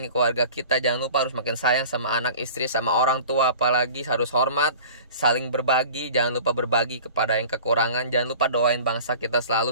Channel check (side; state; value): both; inverted; correlation -0.42